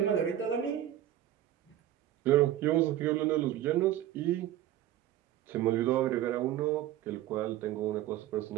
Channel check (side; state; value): left; quieter; 12.7 dB